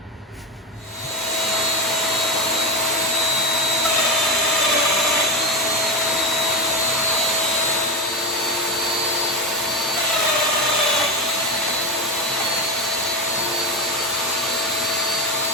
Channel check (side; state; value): both; normal; correlation 0.16